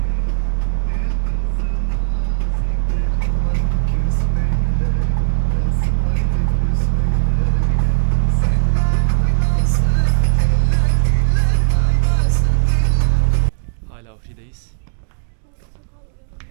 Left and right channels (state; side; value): silent; left; digital silence